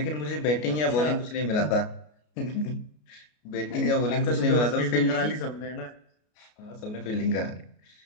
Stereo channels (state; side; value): late; right; 33 ms